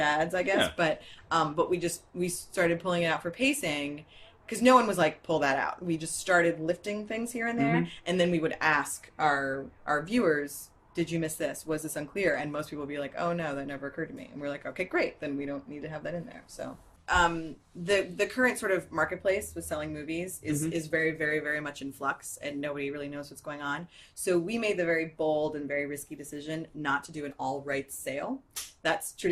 I guess. Yeah. But we started pulling it out for pacing, because no one was like, pull that out. We just started lifting things here and there, and then we would ask our viewers, did you miss this? Was this unclear? And most people would be like, oh no, that never occurred to me. And we're like, okay, great, then we don't need to have that in there. So the current sort of marketplace with selling movies is very, very, very much in flux, and nobody really knows what's going on. So we made the very bold and very risky decision not to do an all rights sale. That's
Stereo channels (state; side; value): identical; both; correlation 1.00